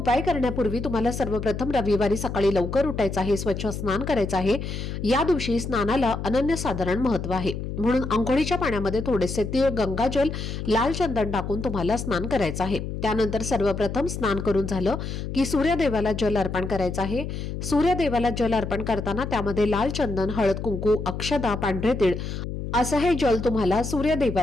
करण्यापूर्वी तुम्हाला सर्वप्रथम रविवारी सकाळी लवकर उठायचं आहे, स्वच्छ स्नान करायचं आहे. या दिवशी स्नानाला अनन्यसाधारण महत्त्व आहे, म्हणून अंघोळीच्या पाण्यामध्ये थोडेसे तीळ, गंगाजल, लाल चंदन टाकून तुम्हाला स्नान करायचं आहे. त्यानंतर सर्वप्रथम स्नान करून झालं की सूर्यदेवाला जल अर्पण करायचं आहे. सूर्यदेवाला जल अर्पण करताना त्यामध्ये लाल चंदन, हळद, कुंकू, अक्षदा, पांढरे तीळ असं हे जल तुम्हाला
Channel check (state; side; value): noise; left; hum, 6 dB below the sound